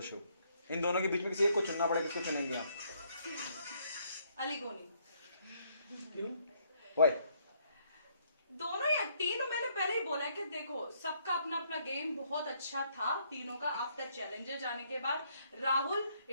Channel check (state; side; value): inverted; both; correlation -0.69